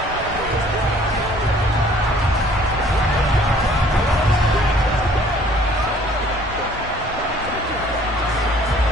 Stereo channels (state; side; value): normal; both; correlation 0.56